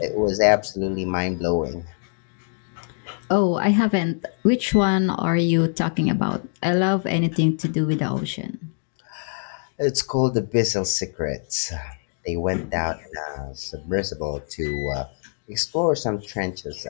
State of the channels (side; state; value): right; silent; 56 dB below the other